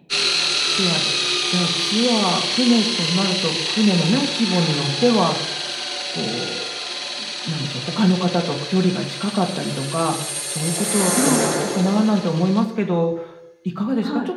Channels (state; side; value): identical; both; correlation 1.00